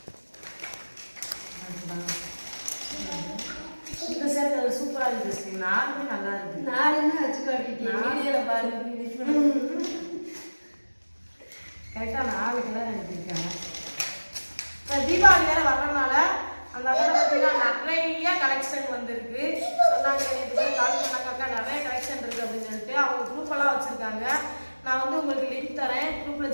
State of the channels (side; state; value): both; inverted; correlation -1.00